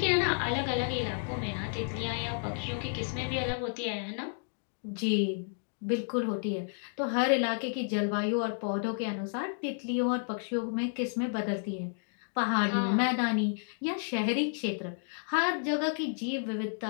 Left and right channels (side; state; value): right; silent; digital silence